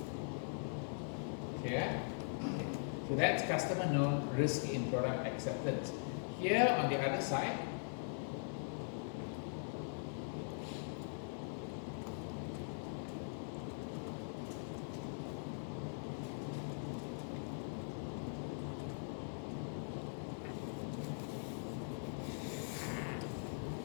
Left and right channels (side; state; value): right; silent; digital silence